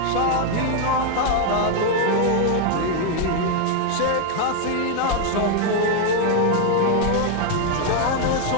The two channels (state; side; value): different; both; correlation 0.01